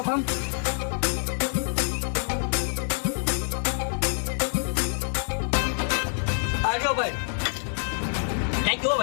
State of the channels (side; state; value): right; silent; digital silence